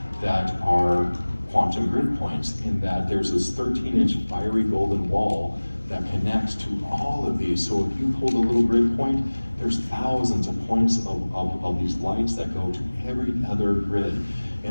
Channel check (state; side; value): inverted; both; correlation -1.00